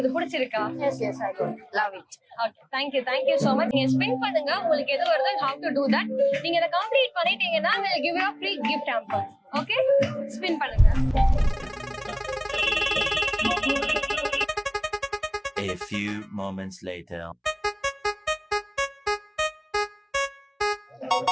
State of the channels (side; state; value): both; identical; correlation 1.00